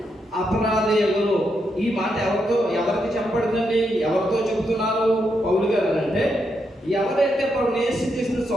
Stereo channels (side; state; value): both; normal; correlation 0.81